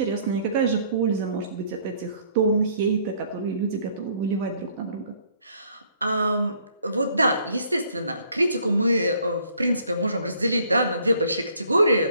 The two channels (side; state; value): both; inverted; correlation -0.62